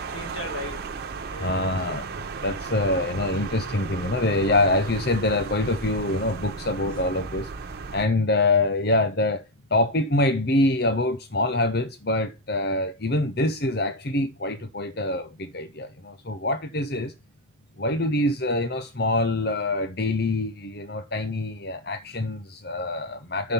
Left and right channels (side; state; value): both; normal; correlation 0.04